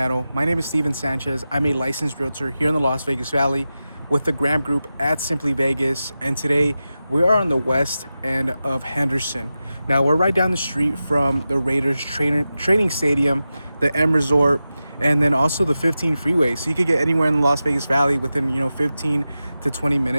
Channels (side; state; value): both; inverted; correlation -0.93